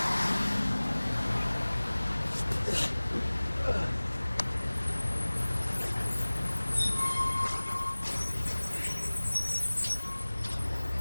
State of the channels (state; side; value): inverted; both; correlation -1.00